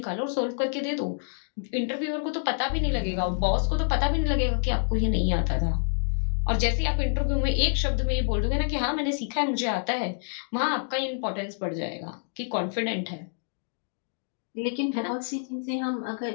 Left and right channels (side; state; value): right; silent; digital silence